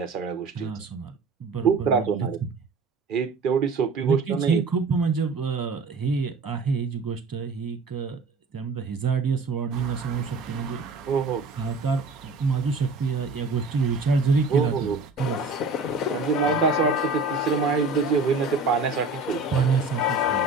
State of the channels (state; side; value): quieter; left; 3.7 dB